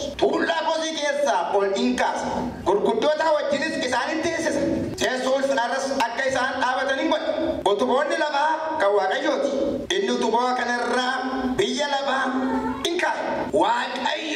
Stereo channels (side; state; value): both; identical; correlation 1.00